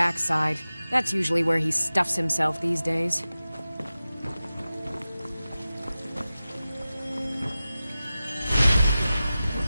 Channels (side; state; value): both; inverted; correlation -0.95